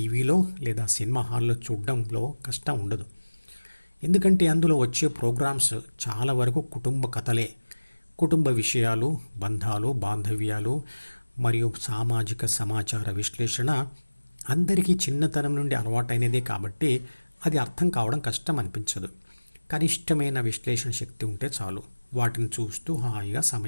లేదా సినిమా హాల్లో చూడడంలో కష్టం ఉండదు. ఎందుకంటే అందులో వచ్చే ప్రోగ్రామ్స్ చాలా వరకు కుటుంబ కథలే. కుటుంబ విషయాలు, బంధాలు, బాంధవ్యాలు మరియు సామాజిక సమాచార విశ్లేషణ అందరికీ చిన్నతనం నుండి అలవాటైనదే కాబట్టి అది అర్థం కావడం కష్టం అనిపించదు. కనిష్టమైన విశ్లేషణ శక్తి ఉంటే చాలు, వాటిని చూస్తూ హాయిగా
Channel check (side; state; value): both; inverted; correlation -1.00